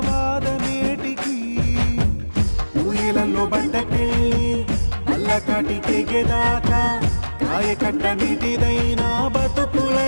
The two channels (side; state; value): both; inverted; correlation -1.00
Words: వాదమేటికి ఊయలలో బండకెళ్ళి అల్లకాటికెగేదాకా కాయ కట్ట నీటిదైనా